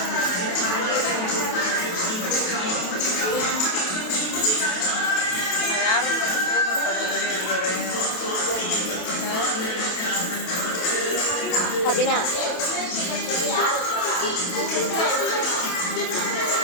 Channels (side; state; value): right; late; 27 ms